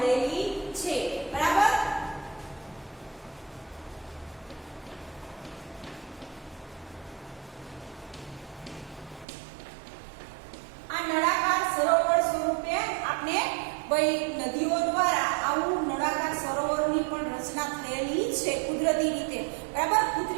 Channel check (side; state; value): left; drops out; at 9.2 s